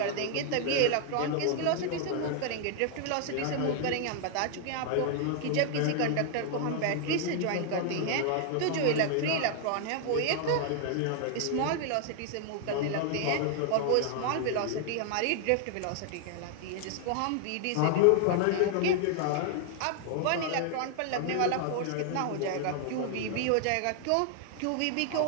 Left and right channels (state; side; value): different; both; correlation 0.00